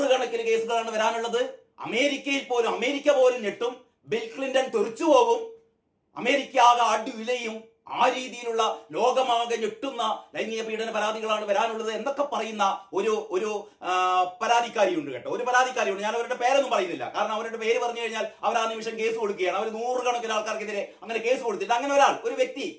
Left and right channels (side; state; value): both; identical; correlation 1.00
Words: കേസുകളാണ് വരാനുള്ളത്. അമേരിക്ക പോലും ഞെട്ടും. ബിൽ ക്ലിന്റൺ തെറിച്ചു പോകും. അമേരിക്ക ആകെ അടിവിലയും. ആ രീതിയിലുള്ള ലോകമാകെ ഞെട്ടുന്ന ലൈംഗിക പീഡന പരാതികളാണ് വരാനുള്ളത് എന്നൊക്കെ പറയുന്ന ഒരു പരാതിക്കാരിയുണ്ട് കേട്ടോ. ഒരു പരാതിക്കാരിയുണ്ട്. ഞാൻ അവരുടെ പേരൊന്നും പറയുന്നില്ല, കാരണം അവരുടെ പേര് പറഞ്ഞു കഴിഞ്ഞാൽ അവർ ആ നിമിഷം കേസ് കൊടുക്കുകയാണ്. അവർ നൂറുകണക്കിന് ആൾക്കാർക്കെതിരെ അങ്ങനെ കേസ് കൊടുത്തിട്ട് അങ്ങനെ ഒരു വ്യക്തി,